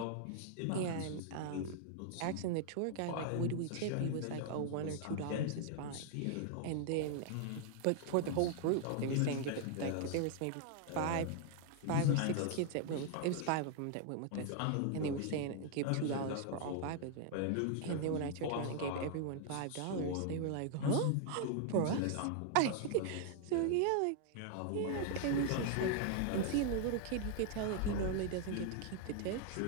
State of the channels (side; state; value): both; different; correlation 0.00